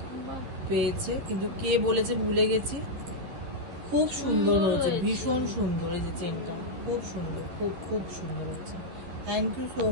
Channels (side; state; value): left; late; 12 ms